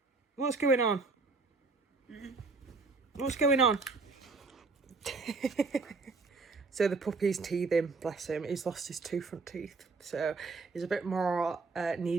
What's going on? What's going on? So the puppy's teething, bless him. He's lost his two front teeth, so he's a bit more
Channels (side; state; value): left; quieter; 4.0 dB